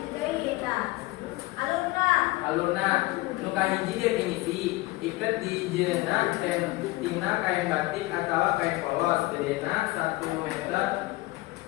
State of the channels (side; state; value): right; quieter; 20.4 dB